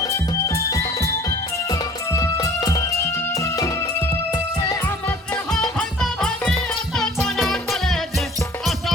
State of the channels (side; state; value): both; normal; correlation 0.49